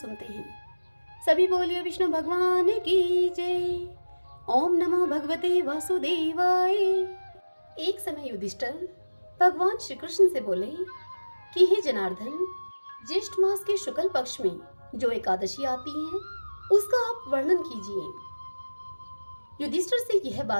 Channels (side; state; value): both; inverted; correlation -1.00